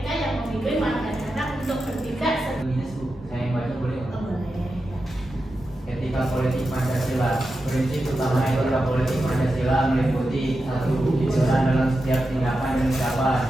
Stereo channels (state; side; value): normal; both; correlation 0.90